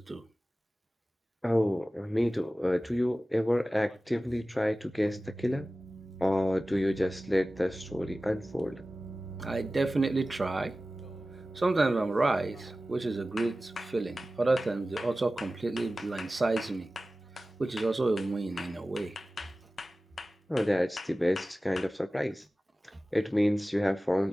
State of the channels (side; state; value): both; normal; correlation 0.96